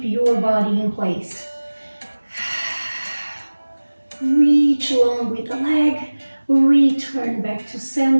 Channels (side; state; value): both; inverted; correlation -1.00